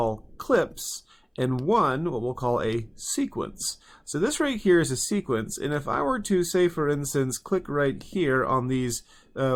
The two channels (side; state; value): both; identical; correlation 1.00